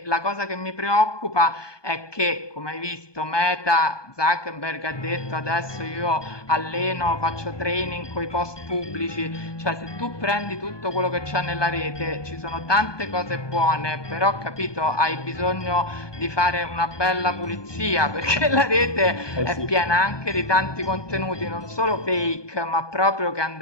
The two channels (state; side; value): late; right; 1.2 ms